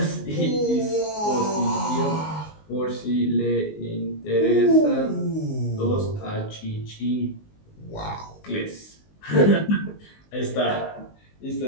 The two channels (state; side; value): late; right; 19 ms